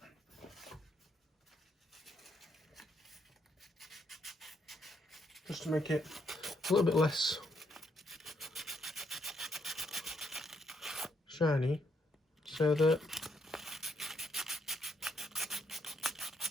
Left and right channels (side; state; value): both; normal; correlation 0.75